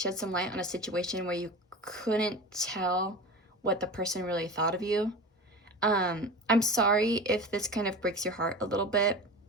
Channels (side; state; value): both; normal; correlation 0.31